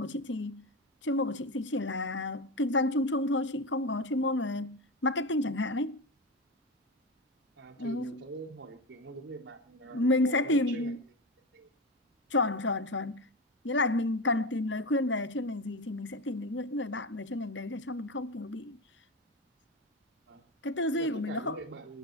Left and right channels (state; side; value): normal; both; correlation 0.20